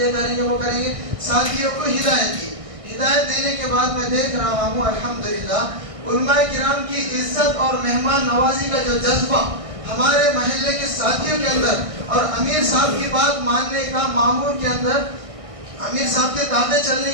کریں گے وہ کریں گے۔ ساتھیوں کو ہدایت دی۔ ہدایت دینے کے بعد میں دیکھ رہا ہوں الحمدللہ علماء کرام کی عزت اور مہمان نوازی کا جو جذبہ ہمارے محلے کے ساتھیوں کے اندر، اور امیر صاحب کی بات ماننے کا مامور کے اندر امیر صاحب کے تابع چلنے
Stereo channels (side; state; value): left; late; 1.6 ms